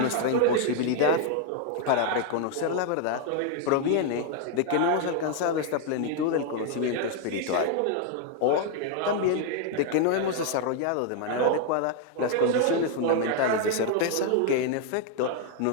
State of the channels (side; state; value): both; different; correlation 0.00